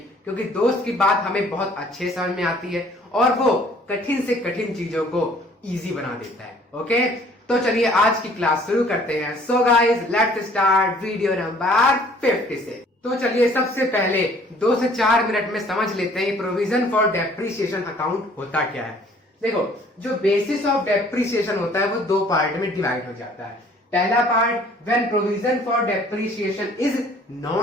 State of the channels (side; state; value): both; normal; correlation 0.56